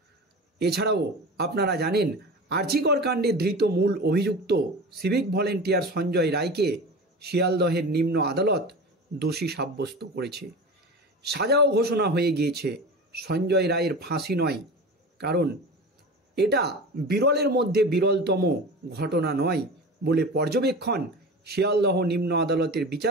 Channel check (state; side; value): normal; both; correlation 0.32